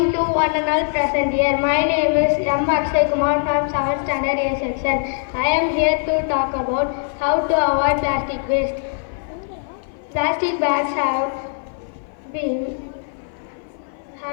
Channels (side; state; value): right; silent; 57 dB below the other